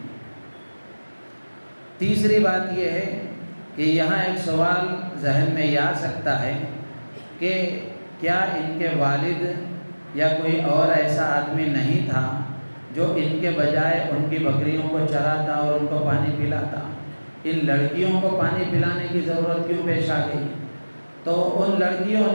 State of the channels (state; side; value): inverted; both; correlation -1.00